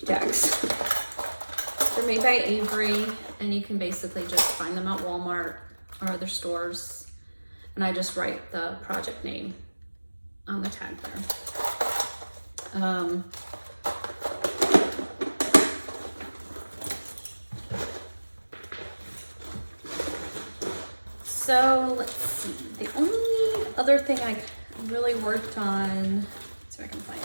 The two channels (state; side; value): inverted; both; correlation -1.00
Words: tags. They're made by Avery, and you can basically just find them at Walmart or other stores. And I just write the project name on the tag there. So let's see, the only other thing I really worked on, let's see if I can find